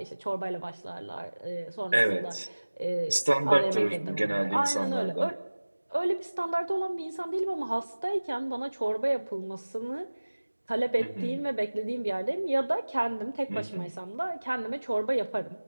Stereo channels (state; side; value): inverted; both; correlation -1.00